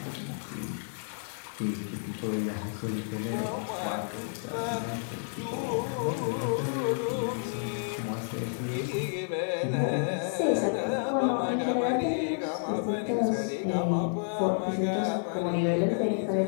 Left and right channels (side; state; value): right; silent; digital silence